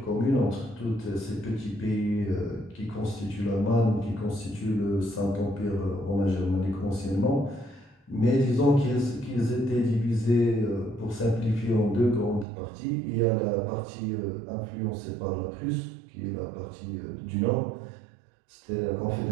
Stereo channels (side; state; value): left; drops out; at 12.5 s